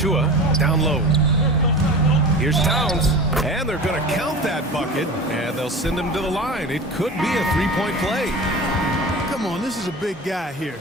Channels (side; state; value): both; normal; correlation 0.34